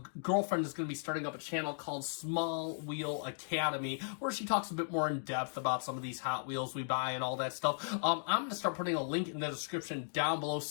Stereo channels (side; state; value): right; silent; digital silence